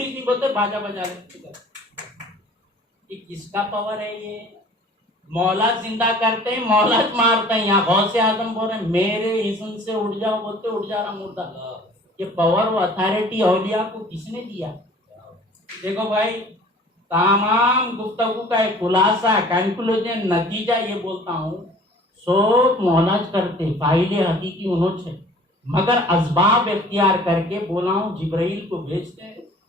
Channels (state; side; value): normal; both; correlation 0.49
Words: बोलते बाजा बजा रहे। ये किसका पावर है? ये मौला जिंदा करते हैं, मौला मारते हैं। यहाँ गौस से आदम बोल रहे मेरे इस्म से उठ जाओ, बोलते उठ जा रहा मुर्दा। ये पावर वो अथॉरिटी औलिया को किसने दिया? देखो भाई, तमाम गुफ्तगू का एक खुलासा, कंक्लूजन, नतीजा ये बोलता हूँ, सब मौलाज करते, फाइले हकीकी उन्होंने, मगर असबाब इख्तियार करके बोला हूँ, जिब्राइल को भेजते हैं,